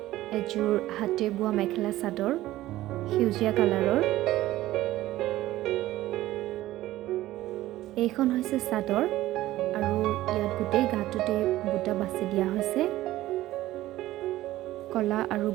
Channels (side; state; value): left; quieter; 15.7 dB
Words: এযোৰ হাতে বোৱা মেখেলা চাদৰ হিউজিয়া কালাৰৰ। এইখন হৈছে চাদৰ আৰু ইয়াত গোটেই গাটোতে বুটা বাছি দিয়া হৈছে কলা আৰু